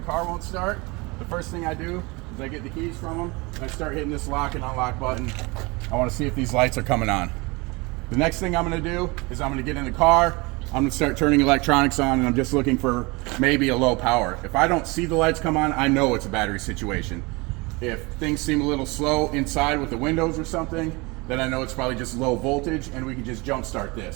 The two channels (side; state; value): left; quieter; 25.7 dB